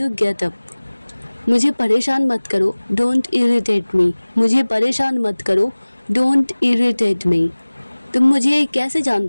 get up. मुझे परेशान मत करो, डोंट इरिटेट मी। मुझे परेशान मत करो, डोंट इरिटेट मी। तुम मुझे कैसे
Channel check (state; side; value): inverted; both; correlation -1.00